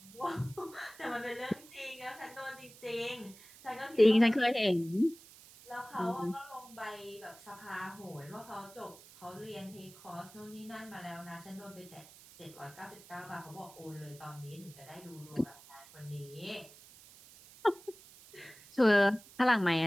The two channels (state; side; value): noise; right; hiss, 21 dB below the sound